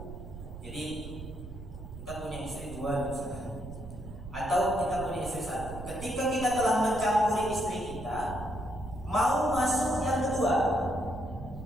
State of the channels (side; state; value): right; noise; rumble, 11 dB below the sound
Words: jadi kita punya istri dua misalnya, atau kita punya istri satu. Ketika kita telah mencampuri istri kita, mau masuk yang kedua,